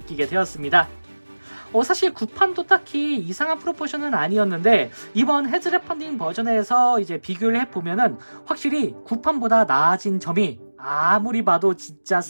되었습니다. 사실 구판도 딱히 이상한 프로포션은 아니었는데 이번 헤즈랩 펀딩 버전에서 이제 비교를 해보면은 확실히 구판보다 나아진 점이 아무리 봐도 진짜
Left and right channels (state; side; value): inverted; both; correlation -1.00